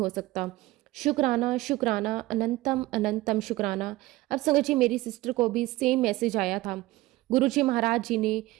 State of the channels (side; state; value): left; quieter; 18.5 dB